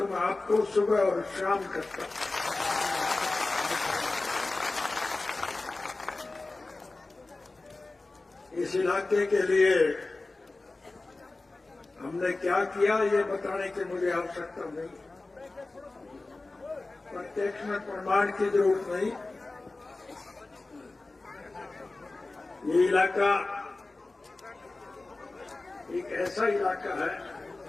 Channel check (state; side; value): quieter; right; 3.2 dB